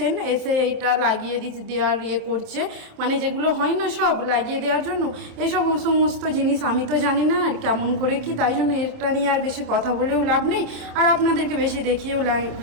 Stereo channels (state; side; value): late; left; 27 ms